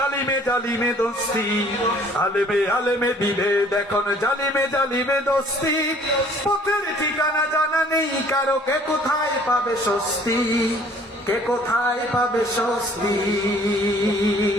জালিমে দোস্তি, আলেমে আলেমে বিভেদ, এখন জালিমে জালিমে দোস্তি। পথের ঠিকানা জানা নেই কারো, কে কোথায় পাবে স্বস্তি, কে কোথায় পাবে স্বস্তি।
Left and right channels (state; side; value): normal; both; correlation 0.56